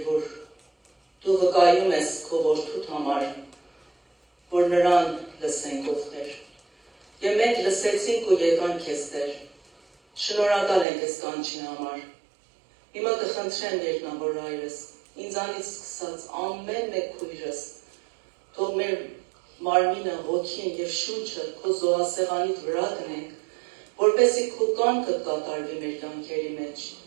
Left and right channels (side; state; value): left; drops out; at 10.9 s